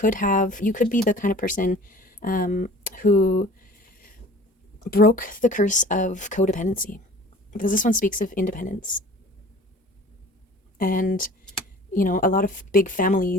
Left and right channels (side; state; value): both; normal; correlation 0.46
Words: be the kind of person who broke the curse of codependency, because this one speaks of independence. And, a lot of big